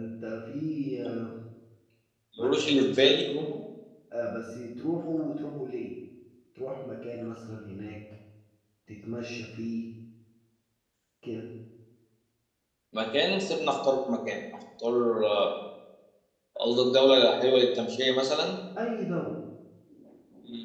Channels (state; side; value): identical; both; correlation 1.00